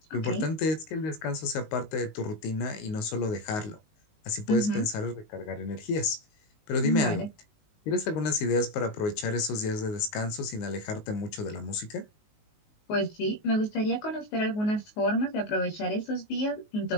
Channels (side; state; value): right; late; 19 ms